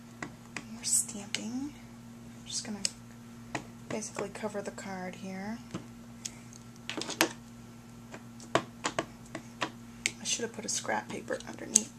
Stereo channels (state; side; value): identical; both; correlation 1.00